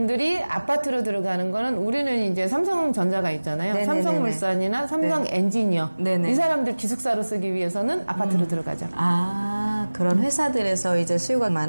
아파트로 들어가는 거는 우리는 이제 삼성전자가 있잖아요. 삼성물산이나 삼성 엔지니어 이 사람들 기숙사로 쓰기 위해서는 아파트로 들어가죠. 그런 회사들에서 이제 수요가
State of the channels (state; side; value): inverted; both; correlation -1.00